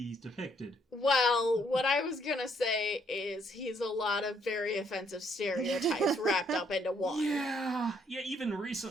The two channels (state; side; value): normal; both; correlation 0.69